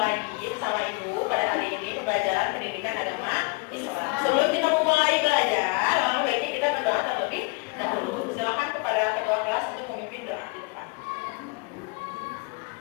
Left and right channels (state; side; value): quieter; right; 28.5 dB